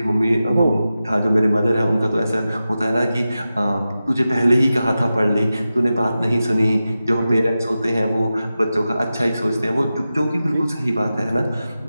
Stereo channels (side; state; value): both; inverted; correlation -0.93